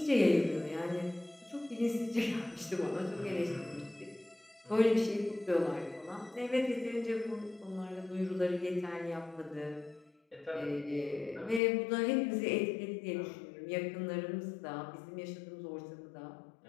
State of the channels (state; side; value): drops out; right; at 11.6 s